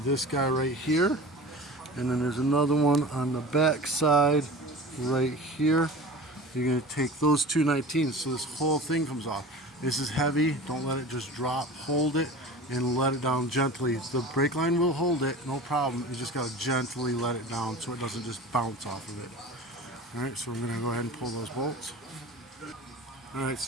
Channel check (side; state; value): both; normal; correlation 0.36